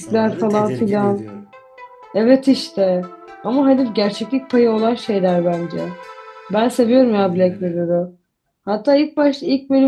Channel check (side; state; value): both; identical; correlation 1.00